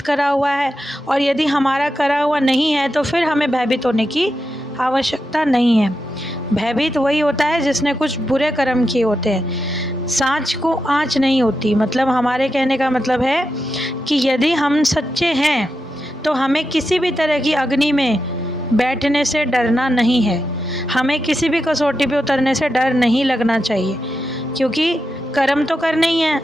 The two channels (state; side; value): normal; both; correlation 0.87